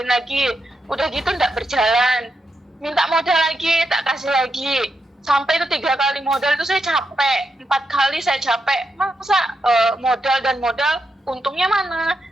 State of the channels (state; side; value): normal; both; correlation 0.84